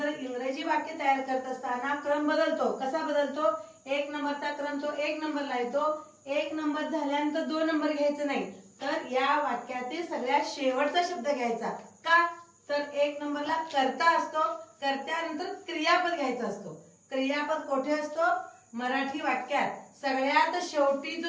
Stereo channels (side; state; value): both; identical; correlation 1.00